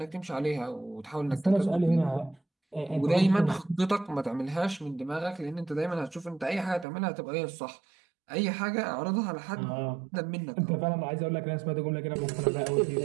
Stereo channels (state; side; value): drops out; left; at 6.9 s